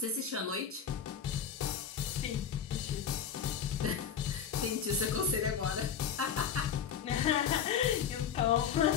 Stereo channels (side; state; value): right; quieter; 7.9 dB